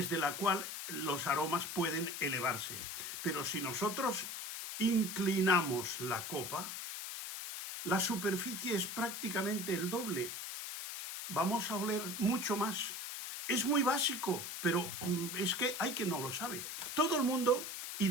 la cual los aromas pueden elevarse. Pero si nosotros inclinamos la copa, la superficie es prácticamente el doble. Vamos a oler mucho más. Es muy básico, pero es que hay quien no lo sabe. Todo el mundo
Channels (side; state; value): left; noise; hiss, 6 dB below the sound